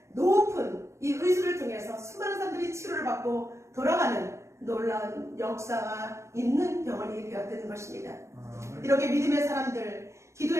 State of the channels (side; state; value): left; late; 0.14 ms